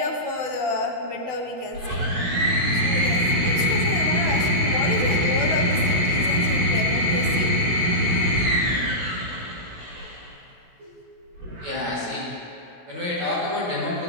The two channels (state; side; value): late; left; 16 ms